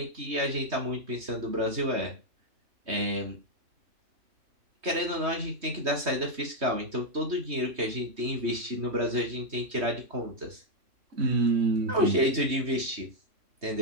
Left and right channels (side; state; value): left; late; 3.2 ms